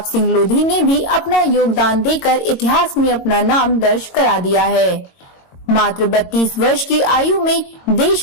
सिंह लोधी ने भी अपना योगदान देकर इतिहास में अपना नाम दर्ज करा दिया है। मात्र 32 वर्ष की आयु में देश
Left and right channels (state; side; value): late; right; 22 ms